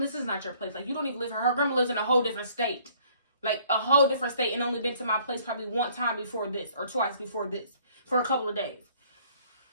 is not your place. Like, you don't even live here. Her grandma lives in a whole different state. like a whole different state, and only been to my place probably one time before this or twice before this for a couple of days.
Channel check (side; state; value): both; inverted; correlation -0.59